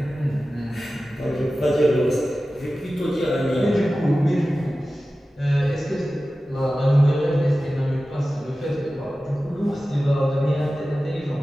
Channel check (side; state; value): both; normal; correlation 0.95